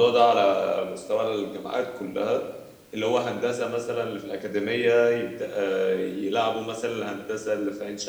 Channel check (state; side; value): identical; both; correlation 1.00